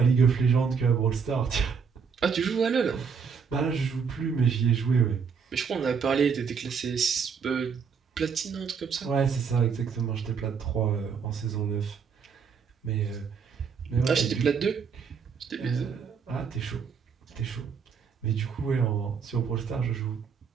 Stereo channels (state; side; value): quieter; left; 6.1 dB